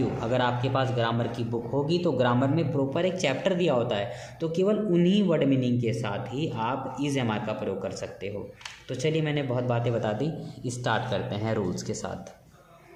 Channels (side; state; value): both; identical; correlation 1.00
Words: अगर आपके पास ग्रामर की बुक होगी तो ग्रामर में प्रॉपर एक चैप्टर दिया होता है, तो केवल उन्हीं वर्ड मीनिंग के साथ ही आप इज एम आर का प्रयोग कर सकते हो। तो चलिए मैंने बहुत बातें बता दी, स्टार्ट करते हैं रूल्स के